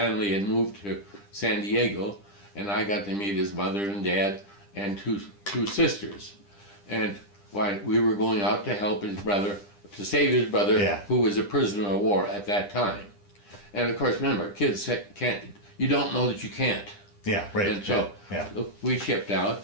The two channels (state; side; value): late; right; 10 ms